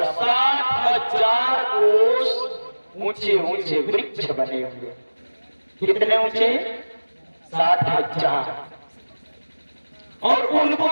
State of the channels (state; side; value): inverted; both; correlation -1.00